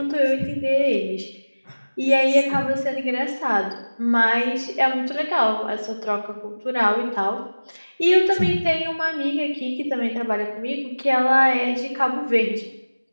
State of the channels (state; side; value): inverted; both; correlation -1.00